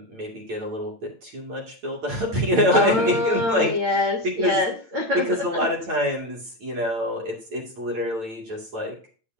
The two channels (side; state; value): left; late; 9.0 ms